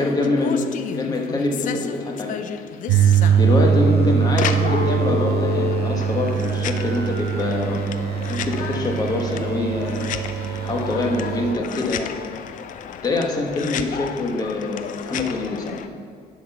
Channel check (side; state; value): both; normal; correlation 0.61